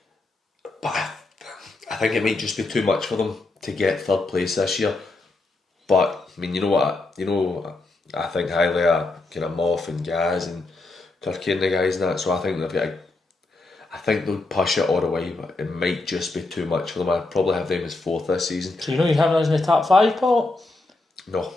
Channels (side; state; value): right; quieter; 3.2 dB